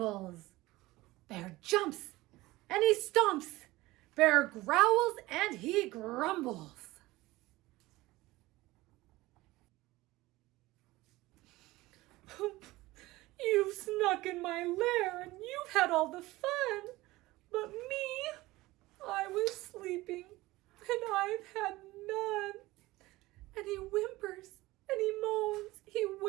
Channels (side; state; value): left; quieter; 19.1 dB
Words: Bear jumps and he stomps. Bear growls and he grumbles. You've snuck in my lair and you've had all the fun. But me, I was sleeping and I've had none. And he whimpers and he moans, he